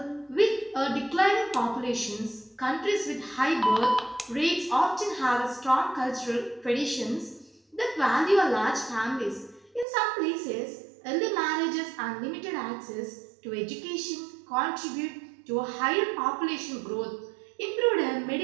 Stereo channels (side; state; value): left; drops out; at 9.9 s